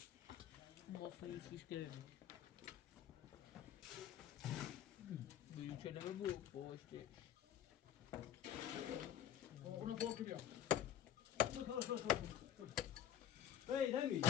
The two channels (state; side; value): quieter; right; 10.7 dB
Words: مفهوم شیش گرمی بگیم چه نمه بود پشتی اونو فوق بیا هی نمی